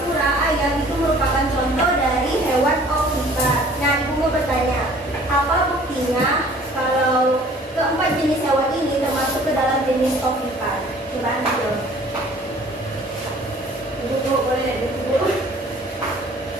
ayam itu merupakan contoh dari hewan ovipar. Nah, ibu mau bertanya, apa buktinya kalau keempat jenis hewan ini termasuk ke dalam jenis ovipar? Coba Andi jawab. Ibu boleh ibu.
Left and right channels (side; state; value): both; normal; correlation 0.52